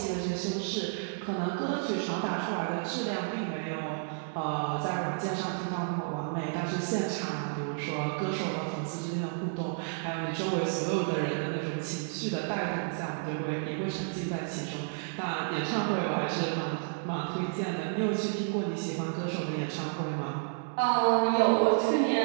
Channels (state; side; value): silent; left; digital silence